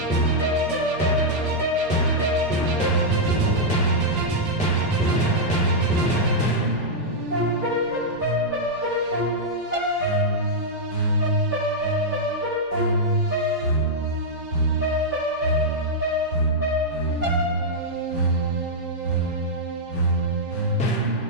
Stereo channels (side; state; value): both; normal; correlation -0.06